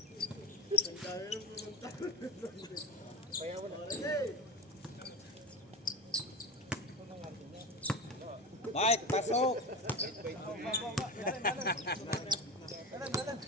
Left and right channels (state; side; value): normal; both; correlation 0.22